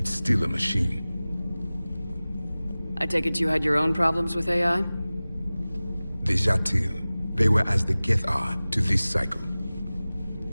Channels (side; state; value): both; inverted; correlation -0.98